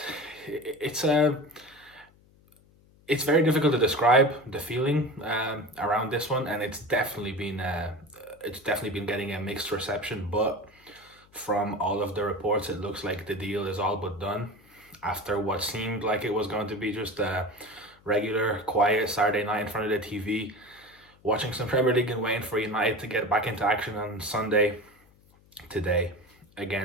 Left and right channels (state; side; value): noise; left; hum, 29 dB below the sound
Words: it's a it's very difficult to describe the feeling around this one, and it's definitely been getting a mixed reception. But from all of the reports, it looks like the deal is all but done after what seemed like it was going to be just a regular, quiet Saturday night in front of the TV, watching some Premier League and waiting for United to get back into action on Sunday today